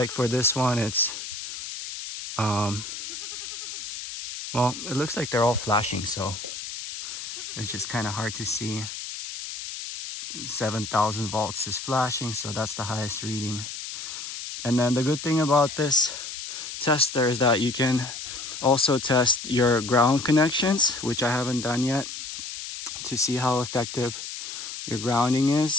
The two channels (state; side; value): noise; left; hiss, 8 dB below the sound